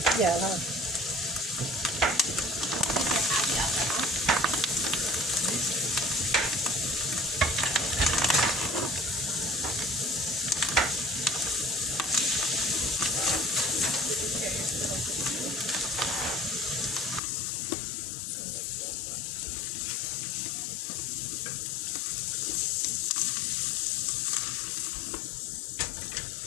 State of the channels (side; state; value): right; drops out; at 17.2 s